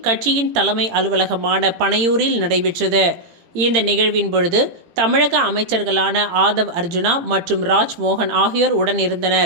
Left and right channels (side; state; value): left; late; 17 ms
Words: கட்சியின் தலைமை அலுவலகமான பனையூரில் நடைபெற்றது. இந்த நிகழ்வின் பொழுது தமிழக அமைச்சர்களான ஆதவ் அர்ஜுனா மற்றும் ராஜ்மோகன் ஆகியோர் உடன்